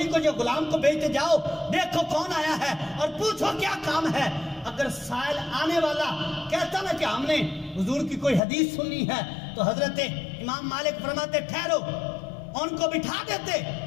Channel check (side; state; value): right; drops out; at 8.4 s